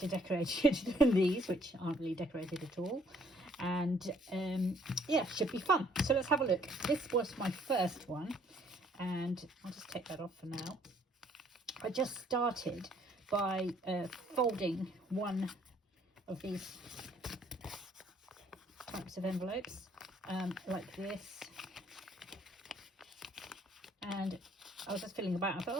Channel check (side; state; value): both; normal; correlation 0.63